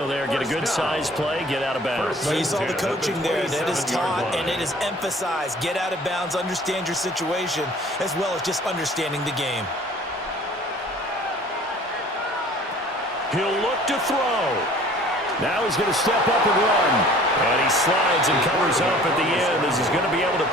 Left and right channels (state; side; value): normal; both; correlation 0.50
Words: there. Get a good size play, get out of bounds. Well, you saw the coaching there. That is taught and it is emphasized. Get out of bounds, understand your situation, as well as just understanding the game. He'll look to throw. Now he's going to step up and run. And he slides and covers up at the end as he's going to be able to